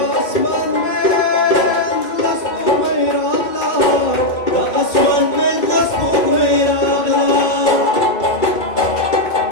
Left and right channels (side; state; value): right; late; 2.4 ms